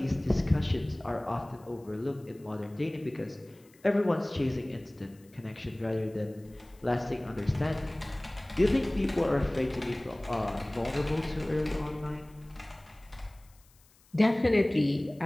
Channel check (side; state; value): left; noise; hiss, 30 dB below the sound